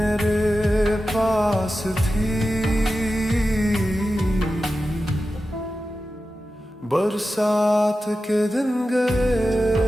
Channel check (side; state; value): both; normal; correlation 0.93